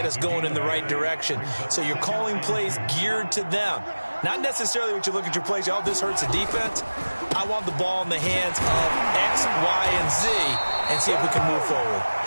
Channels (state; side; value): inverted; both; correlation -1.00